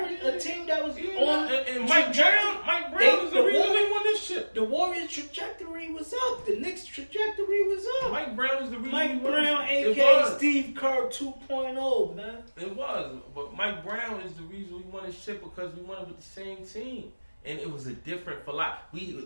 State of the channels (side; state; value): both; inverted; correlation -1.00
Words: a team that was on. And Mike Brown is the reason we won this shit. The Warriors' trajectory was up. The Knicks' trajectory was up. Mike Brown is the reason Mike we won Brown, this shit. a.k.a. Steve Kerr 2.0, man. It was. But Mike Brown is the reason we won this shit, because we won it with the same team. And it was a different